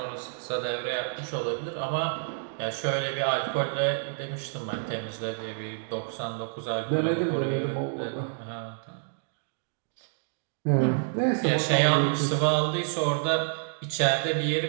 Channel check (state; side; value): silent; left; digital silence